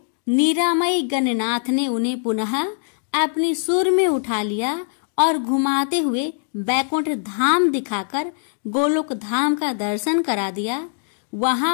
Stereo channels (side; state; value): right; silent; digital silence